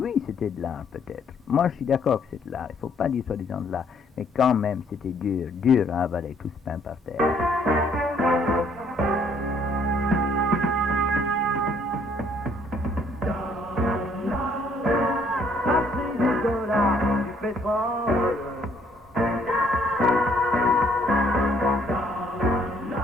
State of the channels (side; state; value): both; normal; correlation 0.65